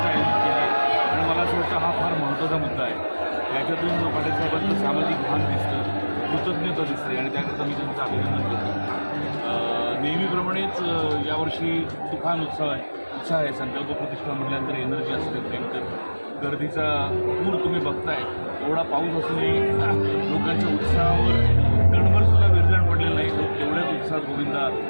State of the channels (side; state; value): both; inverted; correlation -1.00